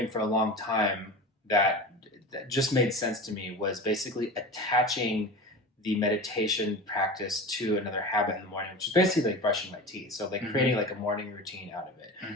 for a long time that just made sense to me was basically attaching the meditation practice to another habit in the morning, which is basically like brushing my teeth. So like Hmm. creating like a morning routine out of it.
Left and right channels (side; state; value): both; normal; correlation 0.31